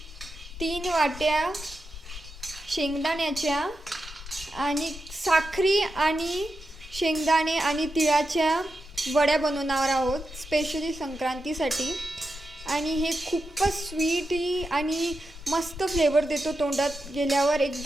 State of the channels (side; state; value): both; normal; correlation 0.88